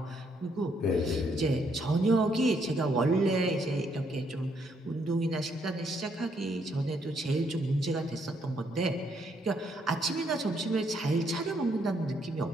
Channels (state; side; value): normal; both; correlation 0.72